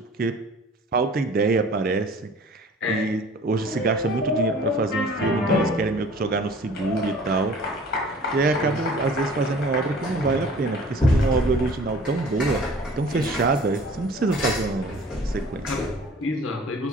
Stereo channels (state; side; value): normal; both; correlation 0.48